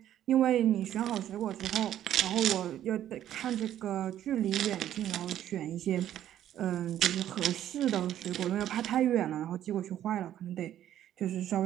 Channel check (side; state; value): left; quieter; 11.5 dB